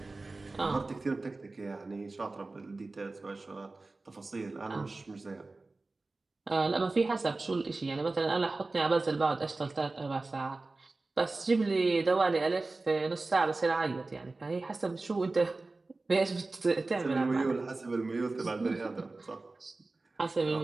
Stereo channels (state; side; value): quieter; left; 3.4 dB